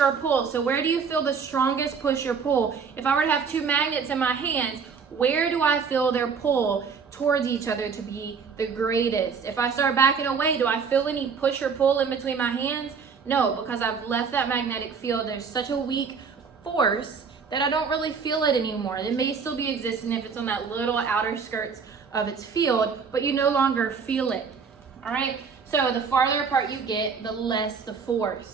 a pull. So where do you feel the strongest push or pull? If I were to have two magnets in my hands, where do I feel their pull towards each other to be the greatest? If I start backing away, do I feel any push or pull in between my hands? No, because I've left that magnetic field. There's such a weak force that I don't really feel it anymore. It may still be existing if it's on that little outer skirts of its field, but you no longer feel it. All right? So the farther apart you get, the less the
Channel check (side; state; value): left; quieter; 5.8 dB